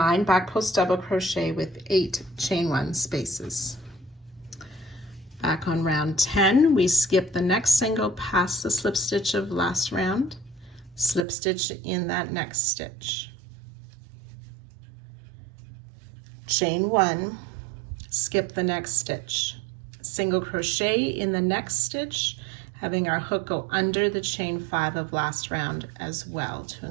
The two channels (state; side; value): drops out; left; at 11.2 s